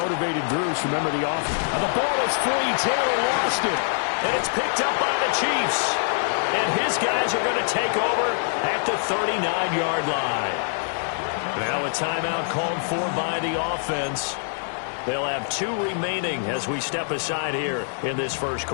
groups. Remember the offense. And the ball is free. Taylor lost it. And it's picked up by the Chiefs. And his guys are going to take over at the 39-yard line. Now a timeout called for by the offense. They'll have 2 remaining as we step aside here in this first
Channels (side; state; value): right; silent; 62 dB below the other